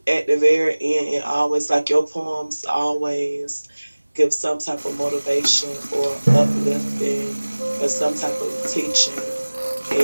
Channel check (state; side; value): inverted; both; correlation -1.00